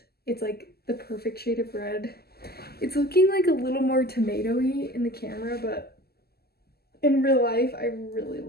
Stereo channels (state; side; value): late; right; 0.46 ms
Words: it's like the perfect shade of red. It's looking like a little more tomato-y in the camera, but in real life, I really